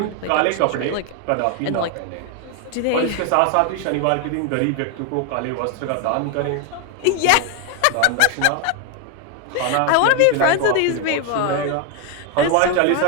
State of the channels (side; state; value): both; different; correlation 0.01